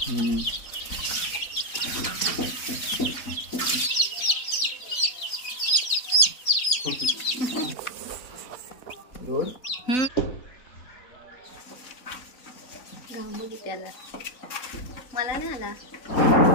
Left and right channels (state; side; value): late; right; 3.9 ms